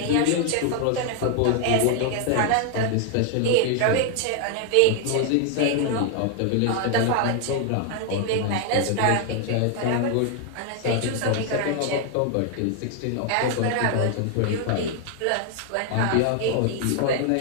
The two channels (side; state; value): both; different; correlation 0.00